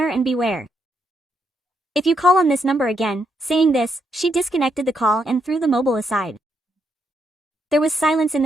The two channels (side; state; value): both; normal; correlation 0.78